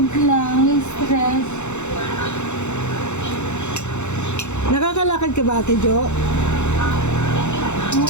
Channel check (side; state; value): right; late; 0.83 ms